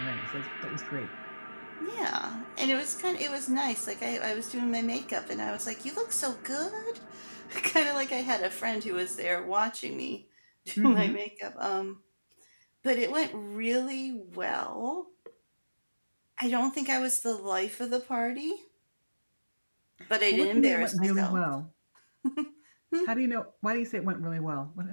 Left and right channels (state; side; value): inverted; both; correlation -1.00